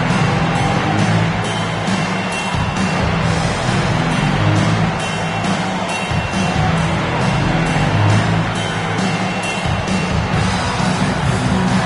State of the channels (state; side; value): identical; both; correlation 1.00